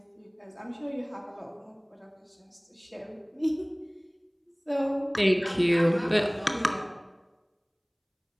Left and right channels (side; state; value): both; identical; correlation 1.00